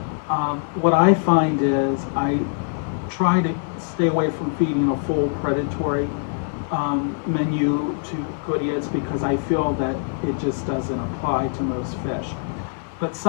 What I find is I try to stay away from feeding a full predatory menu to GOODEIDS because I feel that it just doesn't apply to most fish. But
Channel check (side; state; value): right; silent; 63 dB below the other